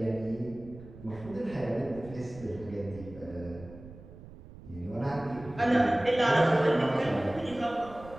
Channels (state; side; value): noise; right; rumble, 17 dB below the sound